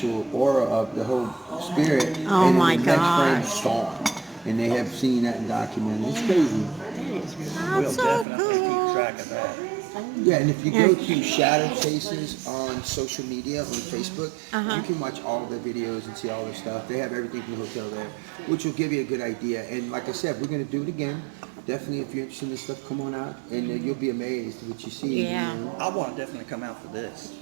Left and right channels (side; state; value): left; drops out; at 8.2 s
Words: aura of the whole spirit, Oh and my then the next frame gosh. is gone. And they have seen that and documented. It's crazy. we'll That's so definitely keep cool. track of that. Yeah, and if you go to Shadow Chases on social media, on Facebook, you can watch all their videos and see all their stuff. They have everything from the hotel there, which will give you a good idea. And like I said, we're going to do it again. Definitely, if you're interested in this stuff, come on out, and you'll be amazed at what you see. Yeah. You know? I want to definitely come out for this.